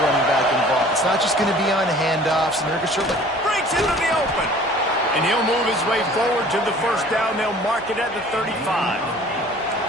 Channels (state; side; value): normal; both; correlation 0.49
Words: back involved. It's not just going to be on handoffs, and they're certainly Breaks into the open. And he'll move his way forward to the first down. They'll mark it at the 35.